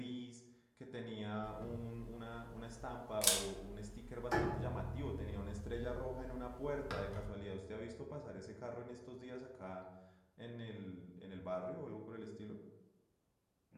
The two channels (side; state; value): both; identical; correlation 1.00